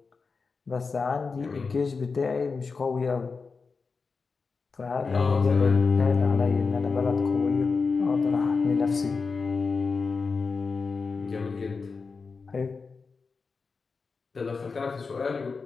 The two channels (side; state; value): right; quieter; 4.7 dB